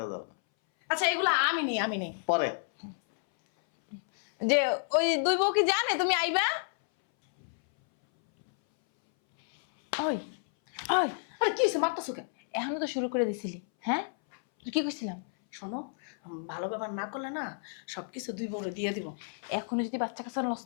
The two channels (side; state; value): right; silent; 57 dB below the other